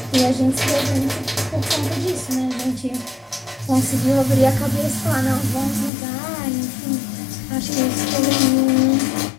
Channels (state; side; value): drops out; right; at 5.9 s